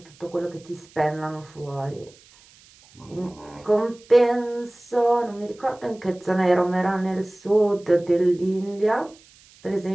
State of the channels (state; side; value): noise; right; hiss, 27 dB below the sound